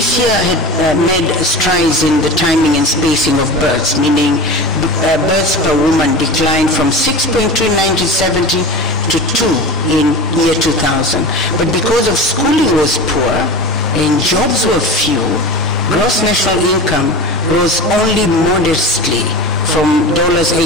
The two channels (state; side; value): normal; both; correlation 0.30